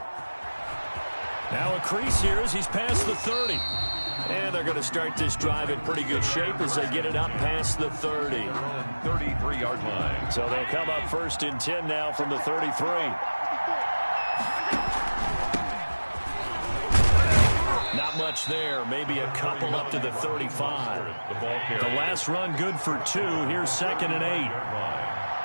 Now a crease here as he's past the 30. And they're going to start this drive in pretty good shape as they get it up past the 30. 33-yard line. So they'll come up 1st and 10 now from the 33. Not much there. Maybe a couple up to the 35. The last run good for 2. Here's 2nd and 8.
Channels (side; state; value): both; inverted; correlation -1.00